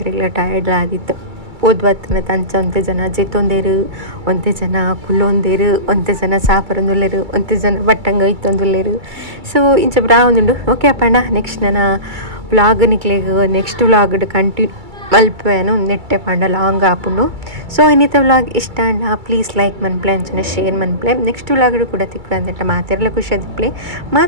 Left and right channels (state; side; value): late; left; 2.3 ms